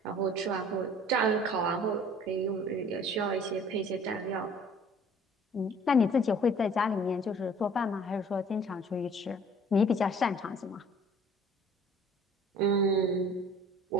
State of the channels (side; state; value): both; normal; correlation 0.52